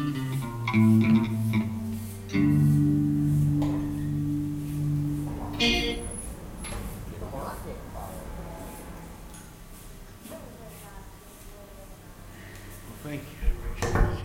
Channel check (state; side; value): identical; both; correlation 1.00